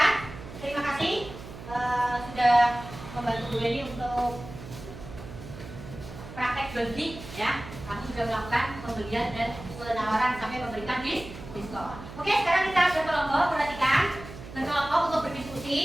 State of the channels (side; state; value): right; noise; hum, 13 dB below the sound